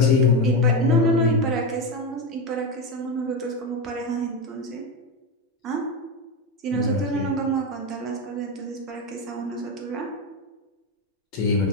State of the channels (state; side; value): normal; both; correlation 0.13